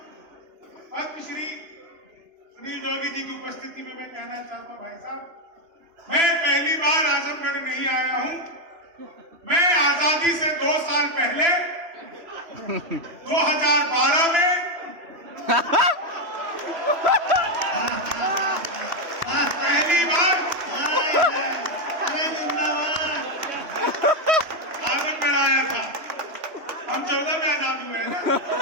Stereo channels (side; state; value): left; late; 3.0 ms